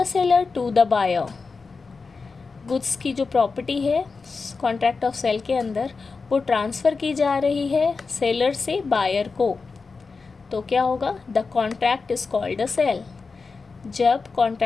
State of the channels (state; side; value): quieter; right; 4.5 dB